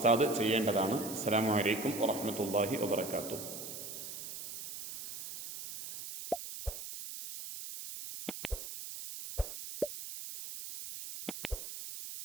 ചെയ്യേണ്ടതാണ്. അസ്സലാമു അലൈക്കും വറഹ്മത്തുള്ളാഹി വബറകാതുഹു.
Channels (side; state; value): right; noise; hiss, 9 dB below the sound